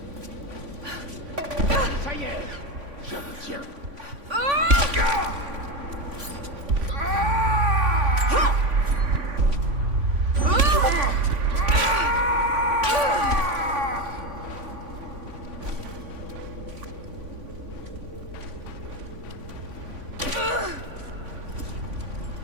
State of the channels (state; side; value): late; left; 3.5 ms